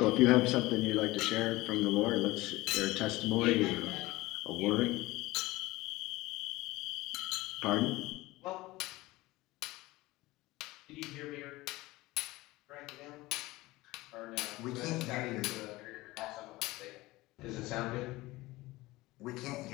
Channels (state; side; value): quieter; right; 19.6 dB